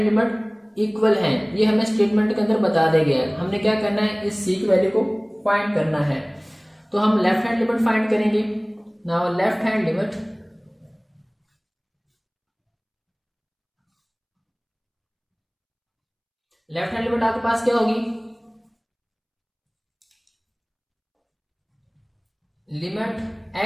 लिमिट इक्वल है, ये हमें स्टेटमेंट के अंदर बता दिया गया है। हमने क्या करना है, इस c की वैल्यू को फाइंड करना है। तो हम लेफ्ट हैंड लिमिट फाइंड करेंगे। नाउ लेफ्ट हैंड लिमिट आपके पास क्या होगी, limit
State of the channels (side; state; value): both; identical; correlation 1.00